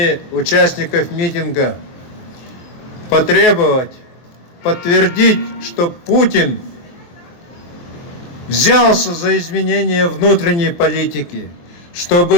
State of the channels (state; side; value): late; right; 23 ms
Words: участников митинга потребовать, подтвердить, что Путин взялся за изменение внутренней политики,